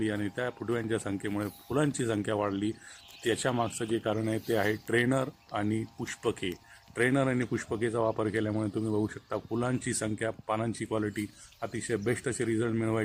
आणि त्या फुटव्यांच्या संख्येमुळे फुलांची संख्या वाढली. त्याच्या मागचं जे कारण आहे ते आहे ट्रेनर आणि पुष्पके. ट्रेनर आणि पुष्पकेचा वापर केल्यामुळे तुम्ही बघू शकता फुलांची संख्या, पानांची क्वालिटी अतिशय बेस्ट असे रिझल्ट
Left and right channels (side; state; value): both; identical; correlation 1.00